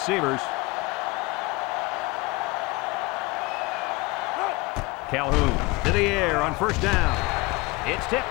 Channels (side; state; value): right; quieter; 23.5 dB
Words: Calhoun to the air on first down. It's tipped.